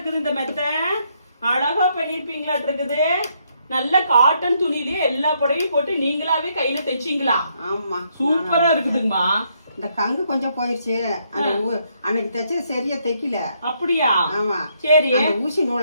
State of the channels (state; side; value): inverted; both; correlation -0.73